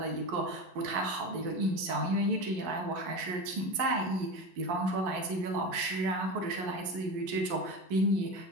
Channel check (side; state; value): left; late; 11 ms